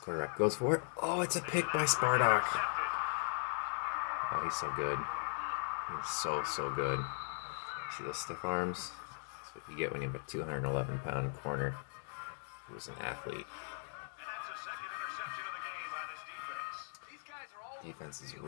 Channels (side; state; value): right; silent; digital silence